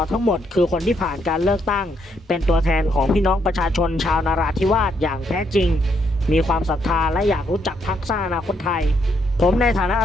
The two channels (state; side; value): normal; both; correlation 0.75